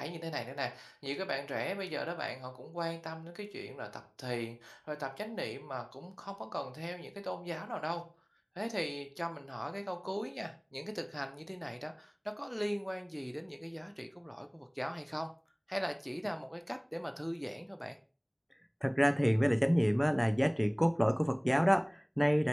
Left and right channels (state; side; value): identical; both; correlation 1.00